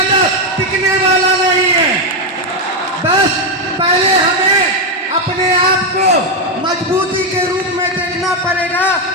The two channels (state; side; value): normal; both; correlation 0.05